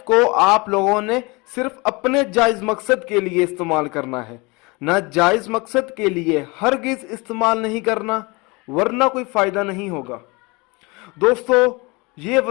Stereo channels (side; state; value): right; quieter; 26.4 dB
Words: को आप लोगों ने सिर्फ अपने जायज़ मकसद के लिए इस्तेमाल करना है, ना जायज़ मकसद के लिए हरगिज़ इस्तेमाल नहीं करना, वरना कोई फ़ायदा नहीं होगा। दोस्तों, ये